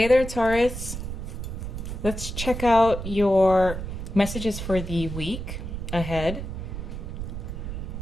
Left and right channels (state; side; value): noise; right; rumble, 6 dB below the sound